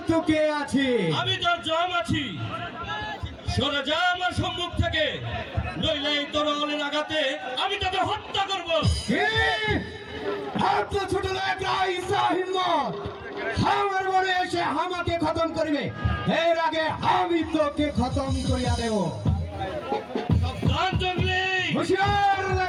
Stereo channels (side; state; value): both; identical; correlation 1.00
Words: তুই কে আছে? আমি তো জম আছি। সরে যা আমার সম্মুখ থেকে, নইলে এই তরোয়ালের আঘাতে আমি তোকে হত্যা করব। ছোট হিম্মত আমার বনে এসে আমাকে খতম করবে, এর আগে আমি তোকে খতম করিয়া দেব।